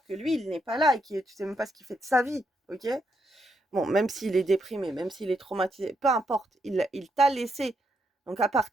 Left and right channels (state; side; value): normal; both; correlation 0.78